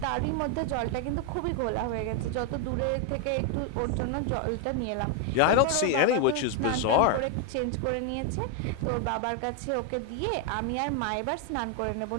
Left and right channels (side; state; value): both; different; correlation 0.00